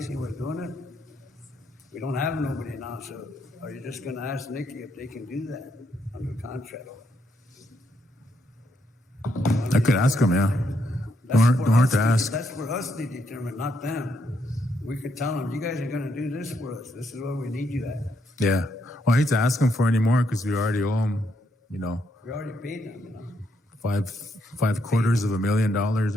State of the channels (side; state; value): both; normal; correlation 0.76